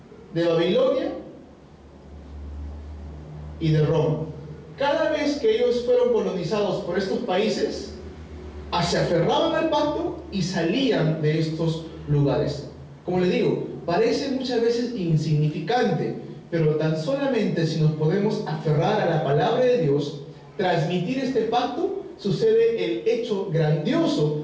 de Babilonia y de Roma. Cada vez que ellos fueron colonizados por estos países, se aferraban al pacto y salían de estos lugares. Como le digo, parece muchas veces insignificante, pero tan solamente si nos podemos aferrar a la palabra de Dios, transmitir este pacto, sucede el hecho grandioso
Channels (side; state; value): both; identical; correlation 1.00